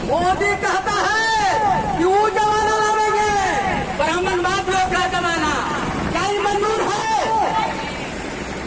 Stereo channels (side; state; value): both; identical; correlation 1.00